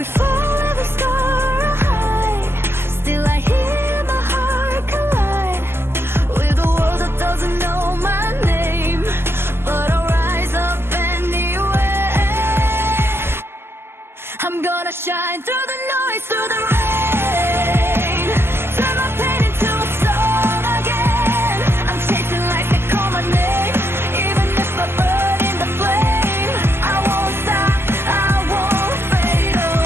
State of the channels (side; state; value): left; late; 0.12 ms